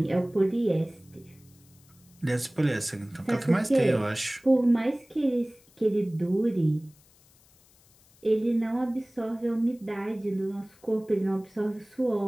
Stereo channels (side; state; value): left; noise; hiss, 29 dB below the sound